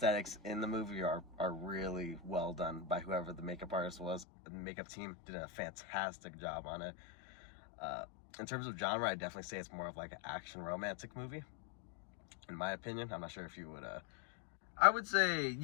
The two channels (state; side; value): drops out; right; at 4.2 s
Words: in the movie are really well done by whoever the makeup artist was. The makeup team did a fantastic job on it. In terms of genre, I'd definitely say it's more of like an action romantic movie, in my opinion. I'm not sure if you would... I would say,